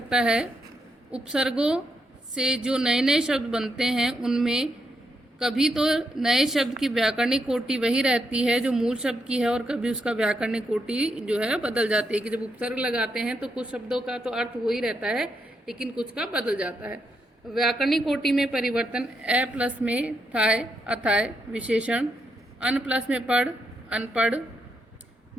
है। उपसर्गों से जो नए नए शब्द बनते हैं उनमें कभी तो नए शब्द की व्याकरणिक कोटि वही रहती है जो मूल शब्द की है, और कभी उसका व्याकरणिक कोटि जो है बदल जाती है। कि जब उपसर्ग लगाते हैं तो कुछ शब्दों का तो अर्थ वही रहता है लेकिन कुछ का बदल जाता है। व्याकरणिक कोटि में परिवर्तन ए प्लस में थाय, अथाय विशेषण, अन प्लस में पढ़, अनपढ़,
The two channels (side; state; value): both; normal; correlation 0.80